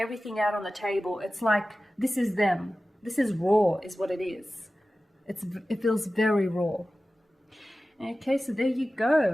out on the table. It's like, this is them. This is raw, is what it is. It feels very raw. Okay, so there you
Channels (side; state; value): both; normal; correlation 0.96